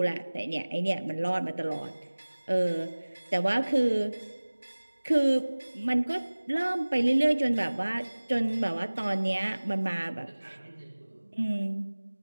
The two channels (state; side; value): inverted; both; correlation -1.00